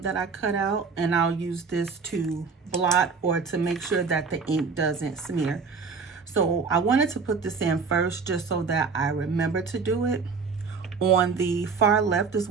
that I cut out, and I'll use this to blot or to make sure that the ink doesn't smear. So I wanted to put this in first just so that I remember to do it. On the far left is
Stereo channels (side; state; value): left; quieter; 5.1 dB